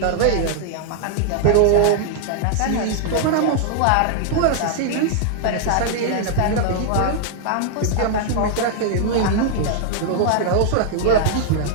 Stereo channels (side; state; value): both; different; correlation 0.00